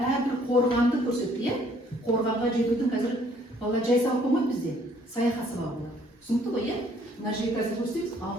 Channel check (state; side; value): normal; both; correlation 0.62